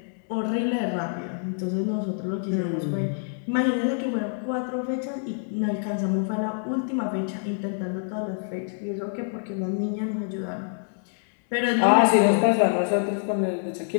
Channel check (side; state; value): right; silent; digital silence